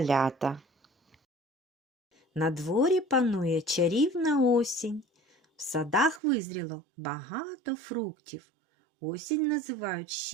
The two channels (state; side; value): drops out; left; at 6.2 s